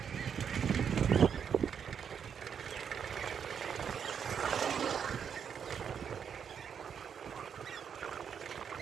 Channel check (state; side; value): quieter; left; 7.5 dB